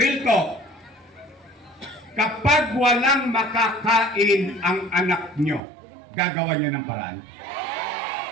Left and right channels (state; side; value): drops out; left; at 5.6 s